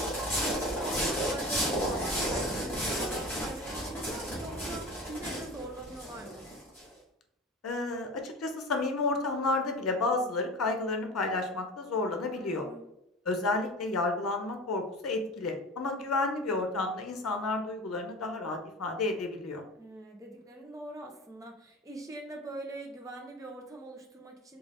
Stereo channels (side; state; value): both; normal; correlation 0.33